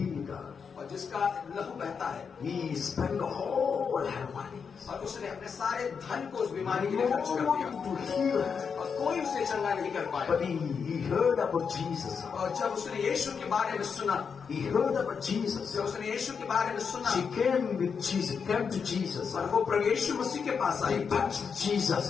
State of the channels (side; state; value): right; quieter; 6.1 dB